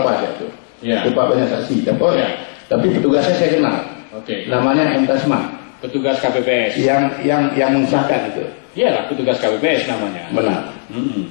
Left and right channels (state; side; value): silent; right; digital silence